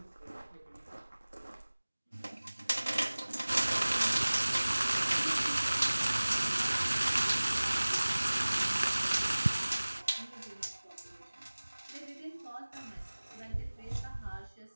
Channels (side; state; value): both; inverted; correlation -1.00